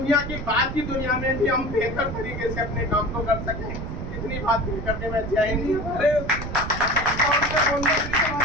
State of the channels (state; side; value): noise; right; rumble, 7 dB below the sound